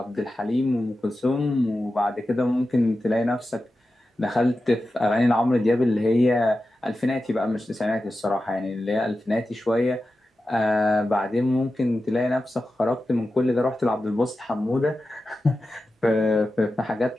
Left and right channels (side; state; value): both; normal; correlation 0.92